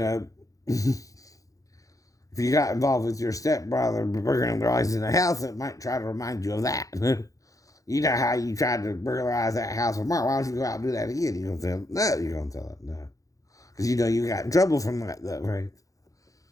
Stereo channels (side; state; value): right; late; 0.16 ms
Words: you got involved with your stepbrother burglarizing the house, it might try to remind you of that. You know how you tried to burglarize that house with Mark. Why don't you go out and do that again? You're going to tell them? No, you're going to tell them no. Because you know you got in trouble from that, though, right?